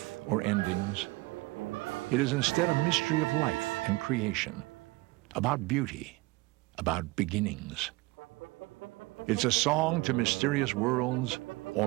or endings. It is instead a mystery of life and creation, about beauty, about beginnings. It's a song to mysterious worlds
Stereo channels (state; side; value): quieter; left; 22.6 dB